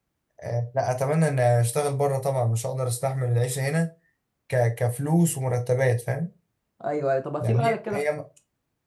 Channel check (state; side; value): identical; both; correlation 1.00